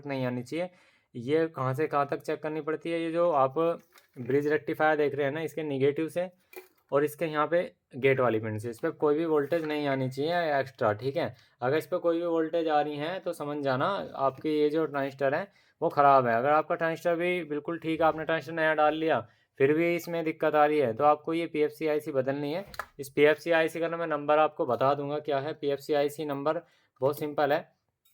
नहीं आनी चाहिए। ये कहाँ से कहाँ तक चेक करनी पड़ती है, ये जो आप ब्रिज रेक्टिफायर देख रहे हैं ना, इसके निगेटिव से और इसके यहाँ पे गेट वाली पिन से, इस पर कोई भी वोल्टेज नहीं आनी चाहिए एक्स्ट्रा, ठीक है। अगर इस पर कोई भी वोल्टेज आ रही है तो समझ जाना आपकी ये जो ट्रांजिस्टर है वो ख़राब है। अगर आपका ट्रांजिस्टर भी बिल्कुल ठीक है, आपने ट्रांजिस्टर नया डाल लिया, फिर भी इसमें दिक्कत आ रही है, तो आपको ये पीएफसी आईसी बदलनी है। इस पीएफसी आईसी का ना मैं नंबर आपको बता दूंगा क्या है। पीएफसी आईसी नंबर बहुत सिंपल है,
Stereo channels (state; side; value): identical; both; correlation 1.00